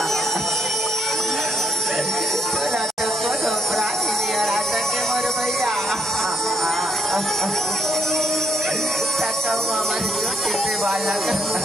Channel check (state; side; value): normal; both; correlation 0.79